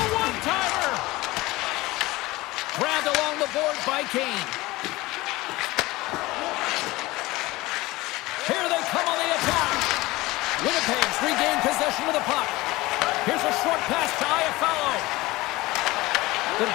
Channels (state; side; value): quieter; right; 20.0 dB